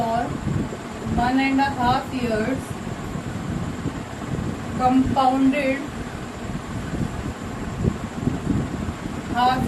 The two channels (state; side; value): identical; both; correlation 1.00